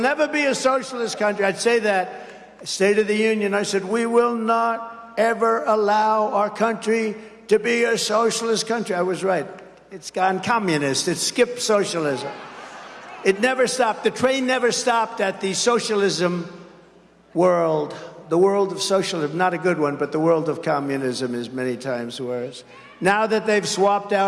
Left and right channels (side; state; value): both; identical; correlation 1.00